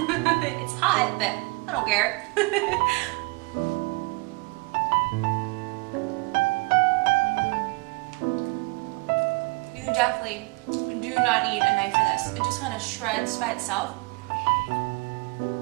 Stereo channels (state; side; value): quieter; left; 28.1 dB